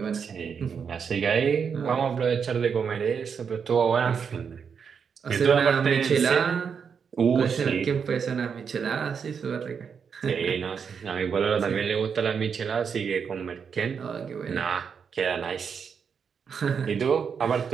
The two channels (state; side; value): quieter; left; 6.5 dB